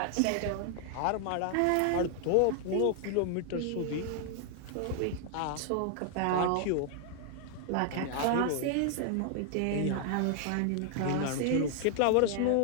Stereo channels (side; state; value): both; different; correlation 0.00